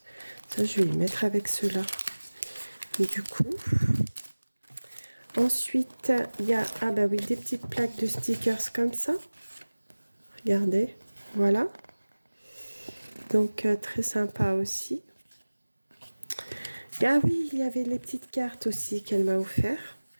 Ça, je vais les mettre avec ceux-là. Du coup, ensuite, il y a oui, des petites plaques de stickers comme ça. Regardez, voilà. Donc, très sympa aussi. Ah oui, il y avait les petites cartes aussi qu'elle m'a offert.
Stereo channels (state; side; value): inverted; both; correlation -1.00